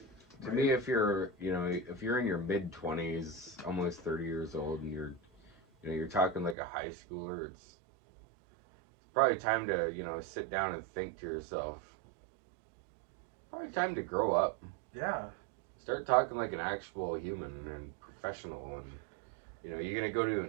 To me, if you're in your mid-20s, almost 30 years old, and you're talking like a high schooler, it's probably time to, sit down and think to yourself. Probably time to grow up. Yeah. Start talking like an actual human and professional, and you're gonna go to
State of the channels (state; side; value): drops out; left; at 6.6 s